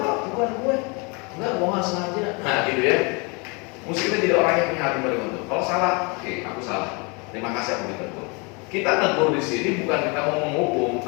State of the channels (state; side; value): quieter; right; 30.8 dB